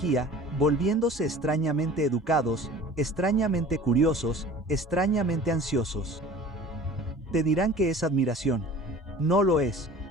volviéndose extrañamente educados, extrañamente curiosos, extrañamente ansiosos. Te dirán que es admiración. No lo es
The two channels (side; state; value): both; normal; correlation 0.43